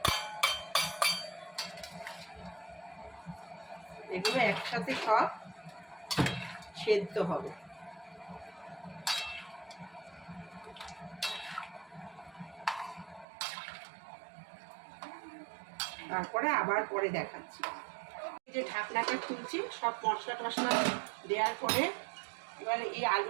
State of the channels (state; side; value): drops out; left; at 13.2 s